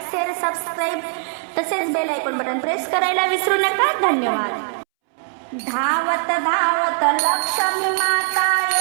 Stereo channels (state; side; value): silent; left; 65 dB below the other